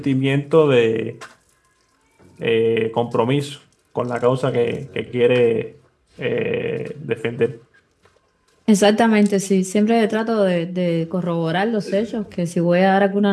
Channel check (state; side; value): identical; both; correlation 1.00